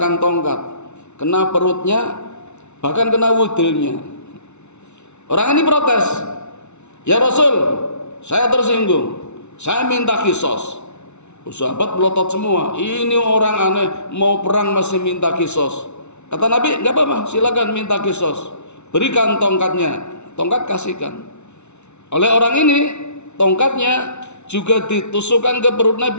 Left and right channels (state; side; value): late; right; 0.82 ms